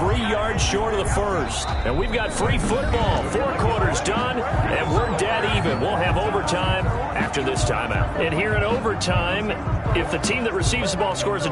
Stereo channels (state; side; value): identical; both; correlation 1.00